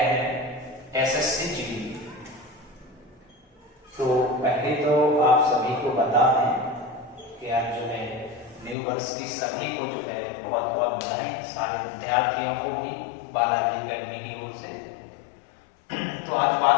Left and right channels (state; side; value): drops out; right; at 8.8 s